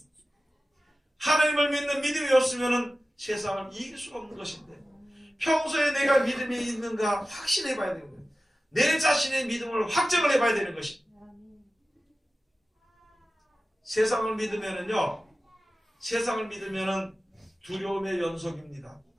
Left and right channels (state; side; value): normal; both; correlation 0.95